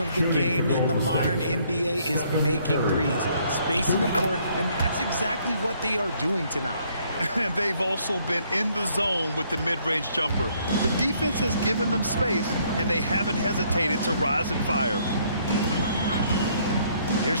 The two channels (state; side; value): inverted; both; correlation -0.66